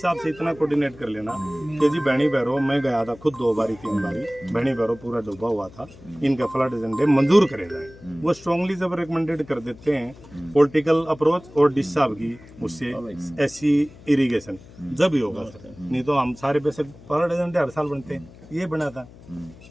से इतना कोऑर्डिनेट कर लेना कि जी बहनी भैरो, मैं गया था खुद 2 बारी 3 बारी, बहनी भैरो पूरा डूबा हुआ था, इनका फ्लड एजेंडे मंजूर करे जाए। वो स्ट्रांगली जब रिकमेंडेड कर देते हैं पॉलिटिकल अप्रोच और डिश साहब की उससे एससी इरीगेशन जब ही होगा सर, नहीं तो हम सारे पैसे फ्लड एजेंडे हर साल बनते हैं, ये बना था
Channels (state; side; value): noise; left; hum, 21 dB below the sound